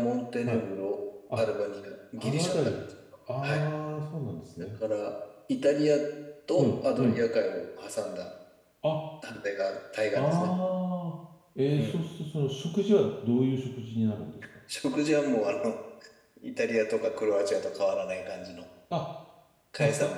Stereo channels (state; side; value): identical; both; correlation 1.00